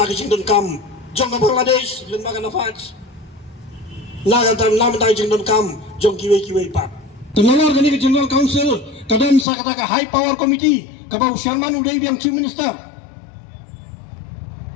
ke jingdon kam jong Bangladesh lembaga nafas naga tam nam ta jingdon kam jong kiwe pat tenolor gani ke General Council kadam sa kata ka High Power Committee kabau Sharman Uday yang Chief Minister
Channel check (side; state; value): right; drops out; at 9.5 s